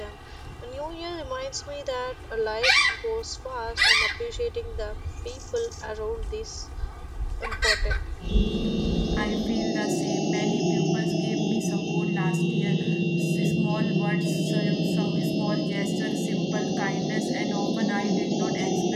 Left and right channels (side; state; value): both; identical; correlation 1.00